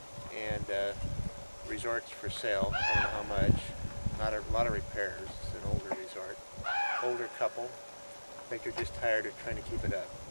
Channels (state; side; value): inverted; both; correlation -1.00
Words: And resorts for sale. I don't know how much. Not a lot of repairs. It's an older resort. Older couple. I think they're just tired of trying to keep it up.